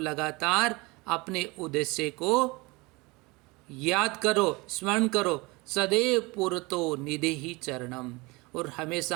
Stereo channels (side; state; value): left; quieter; 24.7 dB